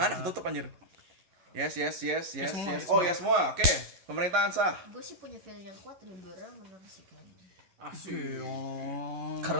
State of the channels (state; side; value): late; left; 11 ms